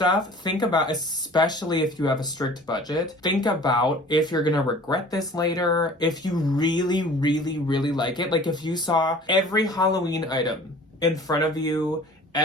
Think about, especially if you have a strict budget, think about if you're gonna regret this later, if you really, really, really like it. Like if you saw every Halloween item in front of you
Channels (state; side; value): normal; both; correlation 0.46